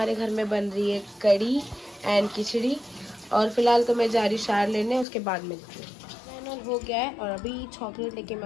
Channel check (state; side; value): drops out; right; at 5.1 s